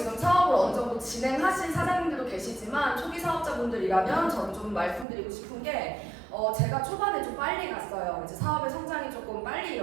사업을 어느 정도 진행하신 사장님들도 계시지만 초기 사업자분들이라면 저는 좀 말씀드리고 싶은 게 제가 초반에 좀 빨리 갔어요. 이제 사업의 성장이 조금 빨리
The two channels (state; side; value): drops out; left; at 5.1 s